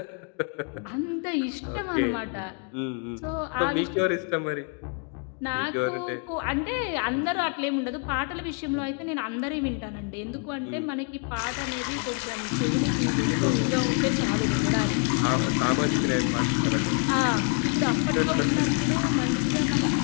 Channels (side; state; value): right; quieter; 39.1 dB